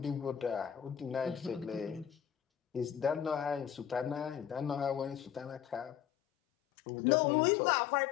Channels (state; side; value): drops out; right; at 6.0 s